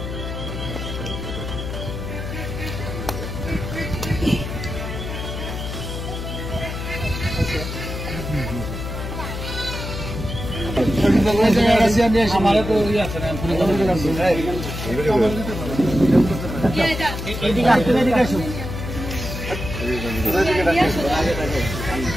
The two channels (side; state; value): left; noise; hum, 6 dB below the sound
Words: আমার তো ইয়ে আছে না